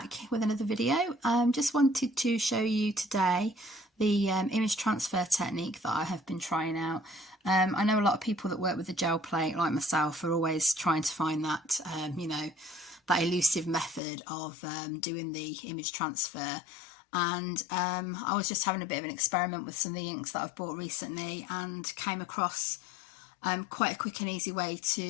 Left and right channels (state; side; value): drops out; right; at 14.0 s